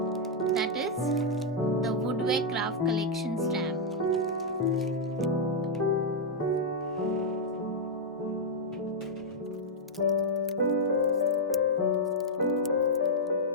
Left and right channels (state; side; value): normal; both; correlation -0.04